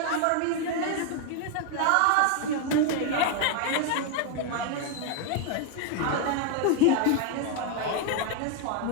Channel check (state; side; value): different; both; correlation 0.01